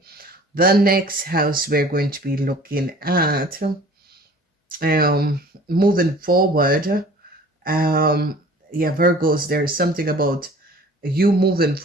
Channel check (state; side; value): normal; both; correlation 0.48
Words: the next house we're going to be looking at, moving forward, yeah, Virgos, there's something about you moving